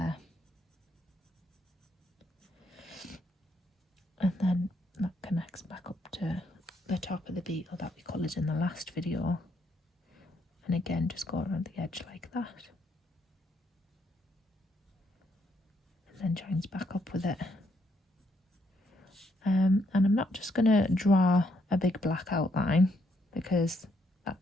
and then that connects back up to the top of the beetle that we coloured in the last video, and again just go around the edge like that, and then joins back up with it. And I'm not just going to draw a big black outline because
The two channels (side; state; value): both; normal; correlation 0.74